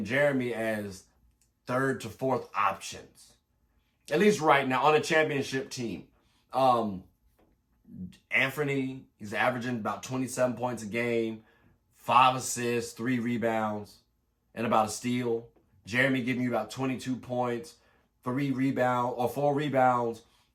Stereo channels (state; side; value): identical; both; correlation 1.00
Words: Jeremy as third to fourth options, at least right now on a championship team. Anthony, he's averaging about 27 points a game, 5 assists, 3 rebounds, and about a steal. Jeremy giving you about 22 points, 4 rebounds,